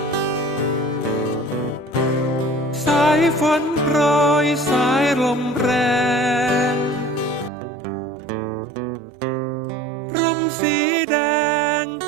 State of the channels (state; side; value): drops out; left; at 7.5 s